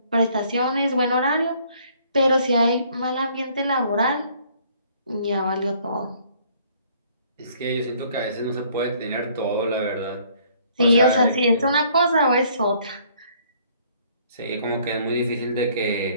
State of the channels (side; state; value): both; inverted; correlation -0.61